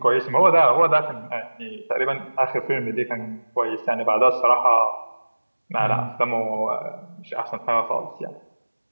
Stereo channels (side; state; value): both; inverted; correlation -1.00